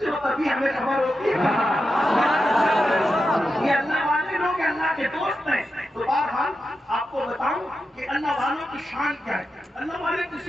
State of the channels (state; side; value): normal; both; correlation 0.89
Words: ہو تبھی ہمیں خبر ہوتی ہے. یہ اللہ والے لوگ اللہ کے دوست ہیں. تو بہرحال آپ کو بتاؤں کہ اللہ والوں کی شان کیا ہے. اللہ والے